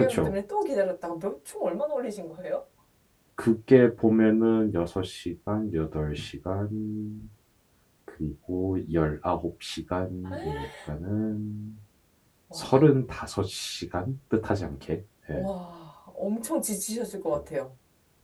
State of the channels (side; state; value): both; identical; correlation 1.00